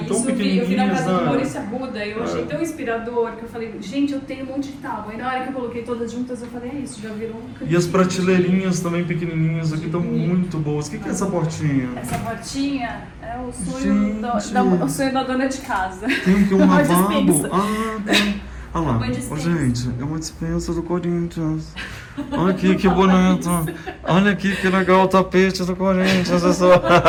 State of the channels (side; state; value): both; identical; correlation 1.00